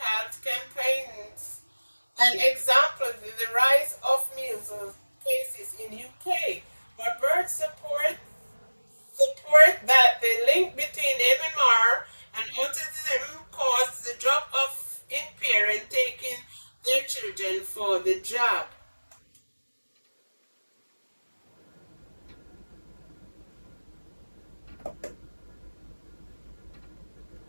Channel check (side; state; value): both; inverted; correlation -1.00